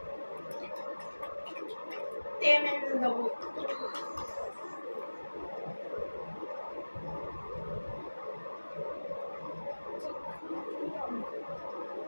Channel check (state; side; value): inverted; both; correlation -1.00